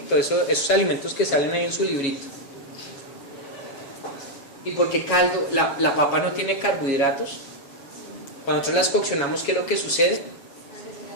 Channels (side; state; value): right; late; 7.1 ms